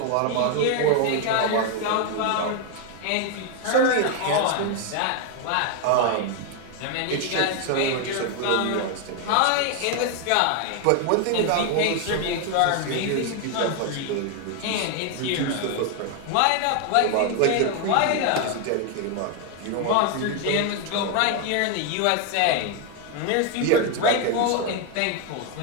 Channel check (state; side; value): different; both; correlation 0.01